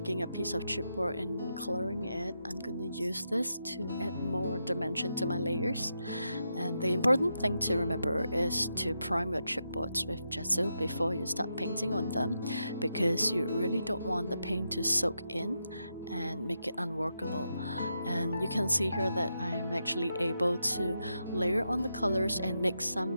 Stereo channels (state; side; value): inverted; both; correlation -0.85